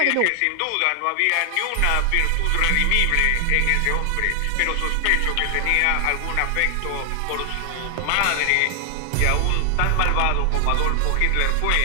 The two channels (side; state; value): both; different; correlation 0.00